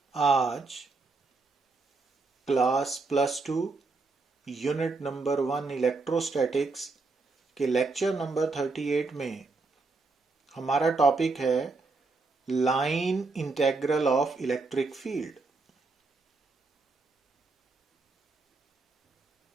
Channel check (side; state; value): left; quieter; 3.8 dB